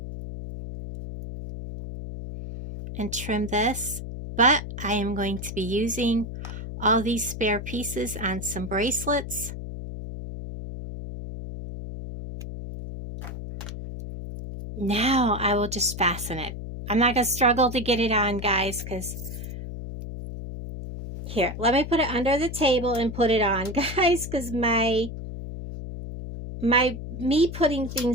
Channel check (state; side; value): noise; left; hum, 8 dB below the sound